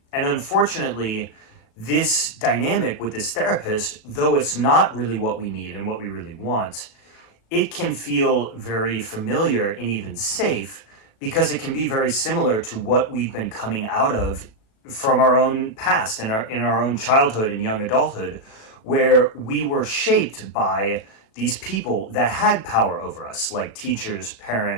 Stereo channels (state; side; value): late; right; 36 ms